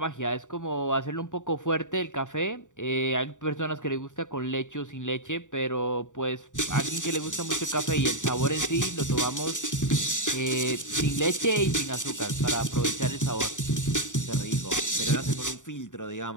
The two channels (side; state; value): right; late; 0.86 ms